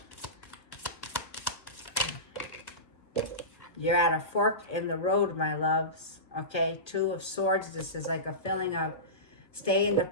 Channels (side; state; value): right; late; 1.5 ms